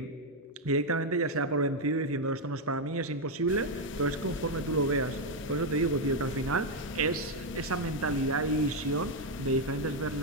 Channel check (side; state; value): both; normal; correlation 0.03